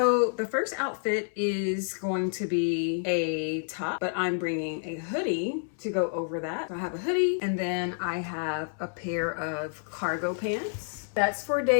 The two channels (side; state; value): right; silent; 59 dB below the other